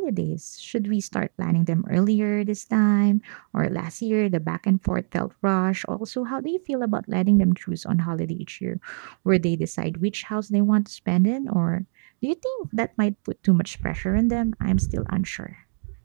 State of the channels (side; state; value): left; silent; digital silence